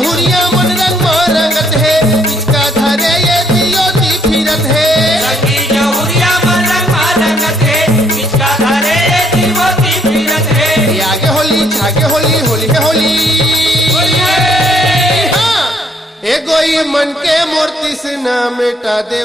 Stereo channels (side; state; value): both; normal; correlation 0.68